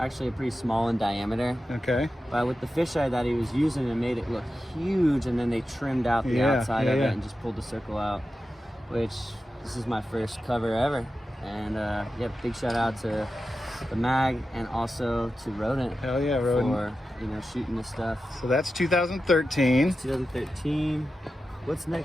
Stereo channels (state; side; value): normal; both; correlation 0.92